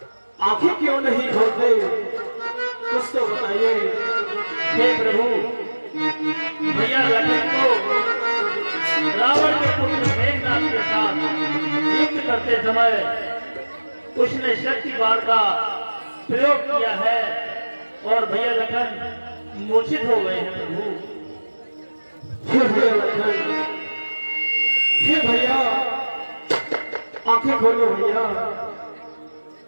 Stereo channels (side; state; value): both; inverted; correlation -1.00